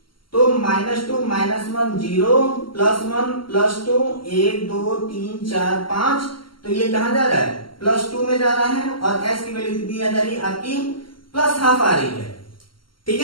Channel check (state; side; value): late; right; 0.73 ms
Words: तो -2 -1 0 +1 +2 1 2 3 4 5, तो ये कहां जा रहा है +2 में जा रहा है और s की वैल्यू कितनी आ जा रही है आपकी +½ आ रही है। ठीक